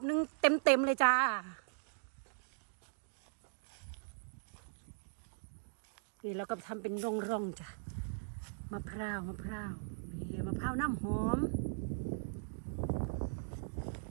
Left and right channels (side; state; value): left; silent; digital silence